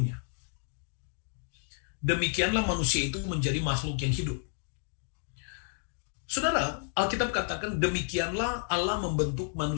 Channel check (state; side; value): silent; right; 57 dB below the other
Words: Demikianlah manusia itu menjadi makhluk yang hidup. Saudara, Alkitab katakan demikianlah Allah membentuk